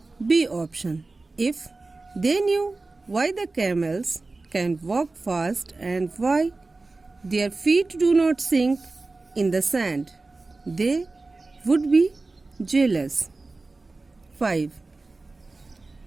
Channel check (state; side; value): quieter; left; 3.4 dB